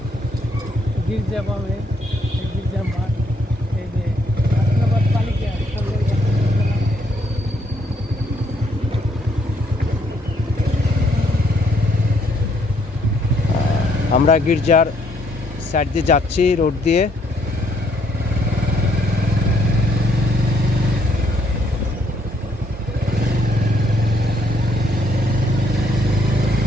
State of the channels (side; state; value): both; normal; correlation 0.70